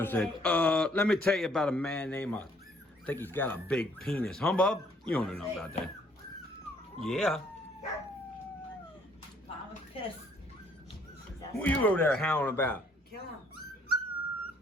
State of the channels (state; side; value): normal; both; correlation 0.64